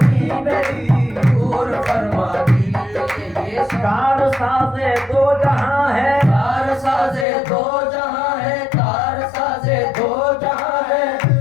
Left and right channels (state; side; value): drops out; right; at 7.2 s